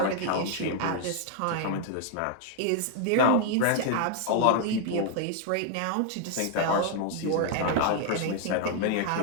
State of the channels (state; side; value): different; both; correlation 0.00